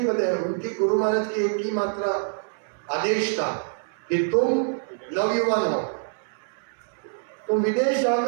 बताया, उनकी गुरु महाराज की एक ही मात्रा आदेश था कि तुम नवयुवान हो, तुम विदेश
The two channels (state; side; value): silent; left; 61 dB below the other